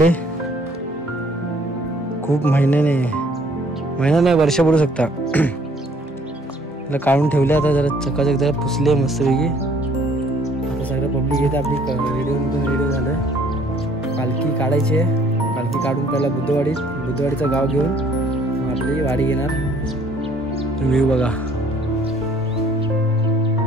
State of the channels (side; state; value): both; normal; correlation 0.60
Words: खूप महिना नाही वर्ष पडू शकता. काढून ठेवले. आता जरा चकाचक जरा पुसले मस्तपैकी. आता सगळं पब्लिक येते. आपली रेडिओ झालं. पालखी काढायची आहे. पालखी काढून पहिला बुद्धवाडीचं गाव घेऊन आपली वाडी घेणार. व्ह्यू बघा.